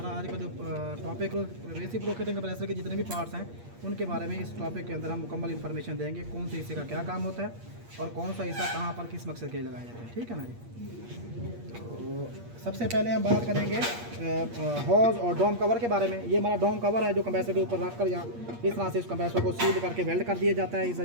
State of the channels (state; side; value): late; left; 8.5 ms